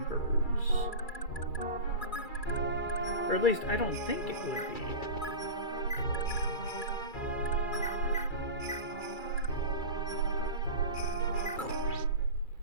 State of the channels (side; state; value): right; late; 2.3 ms